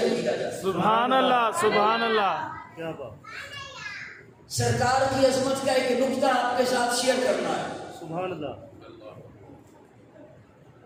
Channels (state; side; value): identical; both; correlation 1.00